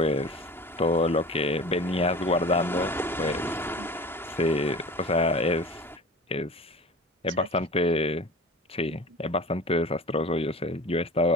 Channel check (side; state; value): both; normal; correlation 0.38